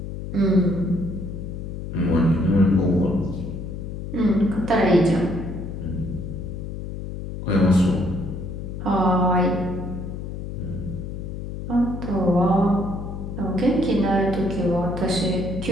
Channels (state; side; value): noise; left; hum, 7 dB below the sound